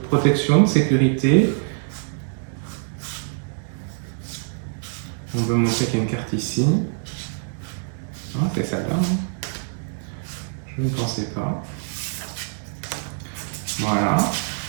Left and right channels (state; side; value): silent; left; digital silence